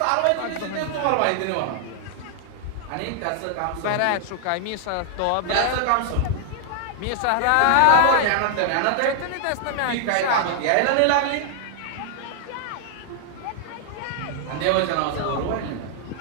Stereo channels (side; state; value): both; different; correlation 0.00